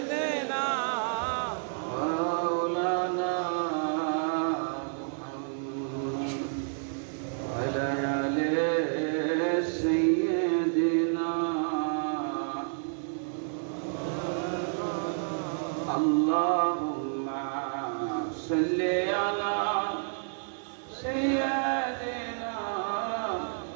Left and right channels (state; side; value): silent; left; digital silence